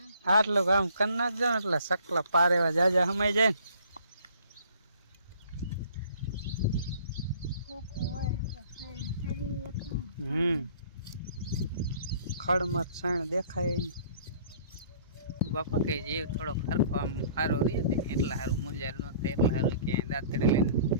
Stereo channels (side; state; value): both; inverted; correlation -0.54